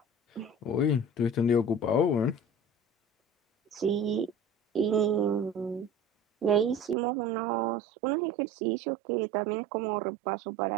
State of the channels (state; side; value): drops out; left; at 7.0 s